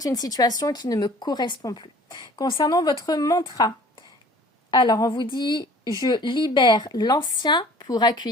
une situation qui ne me correspond plus. Concernant votre mantra, alors on vous dit « Je libère l'ancien pour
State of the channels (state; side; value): normal; both; correlation 0.50